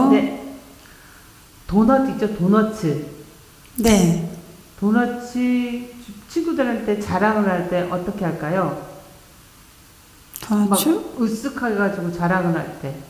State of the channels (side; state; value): both; identical; correlation 1.00